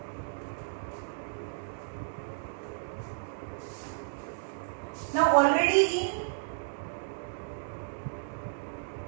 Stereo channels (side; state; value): left; silent; digital silence